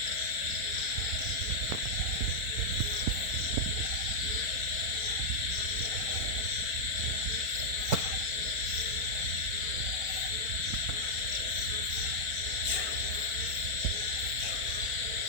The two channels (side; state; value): left; late; 4.5 ms